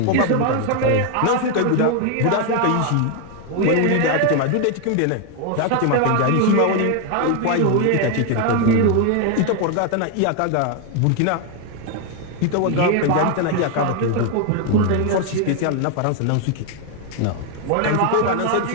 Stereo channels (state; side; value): different; both; correlation 0.01